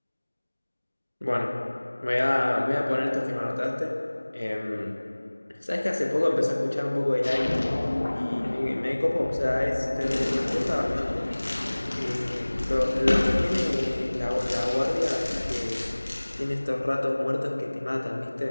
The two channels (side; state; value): both; inverted; correlation -1.00